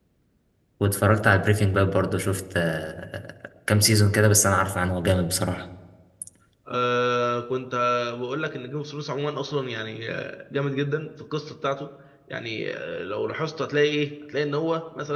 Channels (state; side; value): identical; both; correlation 1.00